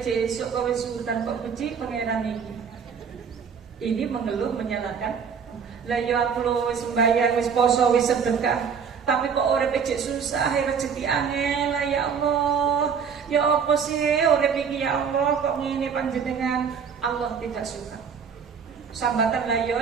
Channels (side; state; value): left; quieter; 6.6 dB